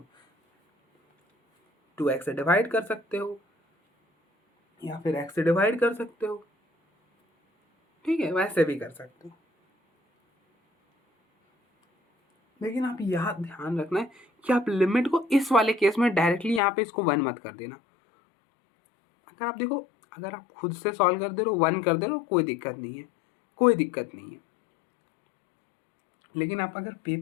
2x से डिवाइड कर सकते हो या फिर x से डिवाइड कर सकते हो, ठीक है, वैसे भी कर सकते हो। लेकिन आप यह ध्यान रखना है कि आप लिमिट को इस वाले केस में डायरेक्टली यहाँ पे इसको 1 मत कर देना। अगर आप देखो, अगर आप खुद से सॉल्व कर दे रहे हो 1 कर दे रहे हो, कोई दिक्कत नहीं है, कोई दिक्कत नहीं है। लेकिन आप अगर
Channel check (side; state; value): right; drops out; at 16.6 s